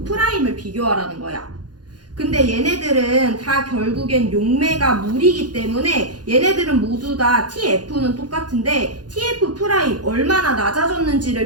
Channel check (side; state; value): left; late; 0.69 ms